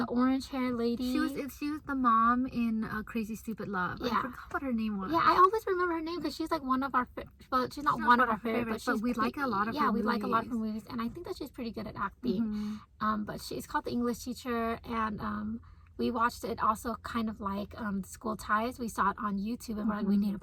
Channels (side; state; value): both; identical; correlation 1.00